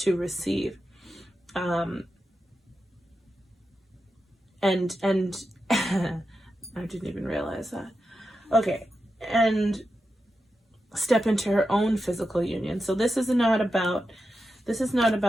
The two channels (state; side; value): normal; both; correlation 0.89